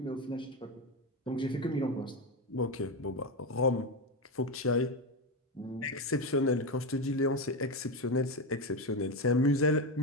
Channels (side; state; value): both; normal; correlation 0.13